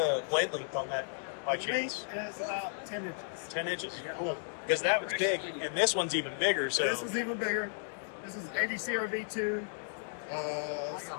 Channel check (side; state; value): right; silent; digital silence